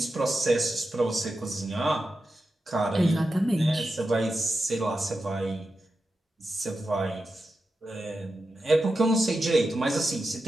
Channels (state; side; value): normal; both; correlation 0.90